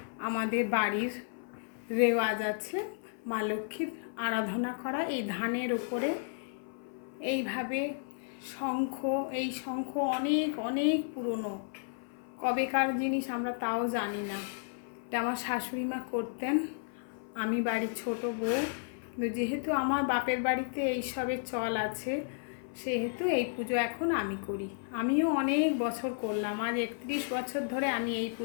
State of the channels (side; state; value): right; silent; 56 dB below the other